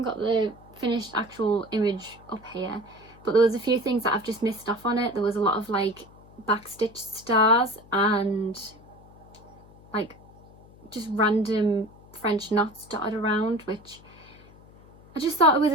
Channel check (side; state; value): left; noise; hum, 24 dB below the sound